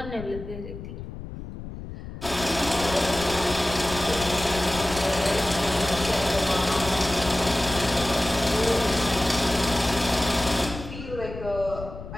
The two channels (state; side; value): noise; left; rumble, 11 dB below the sound